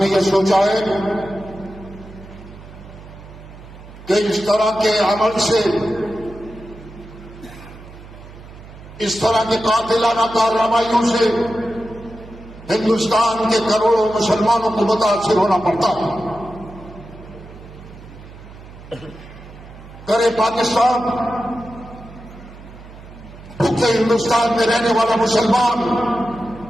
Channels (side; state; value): right; noise; hum, 18 dB below the sound